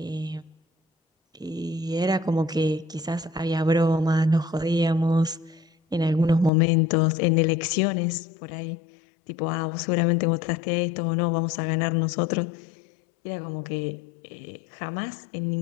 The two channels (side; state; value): right; drops out; at 6.5 s